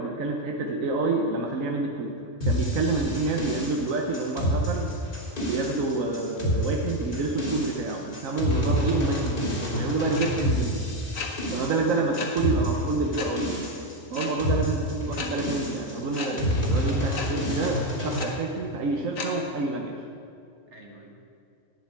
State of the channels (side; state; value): both; normal; correlation 0.08